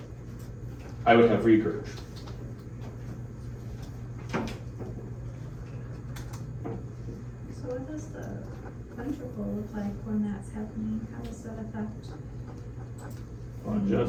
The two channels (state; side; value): identical; both; correlation 1.00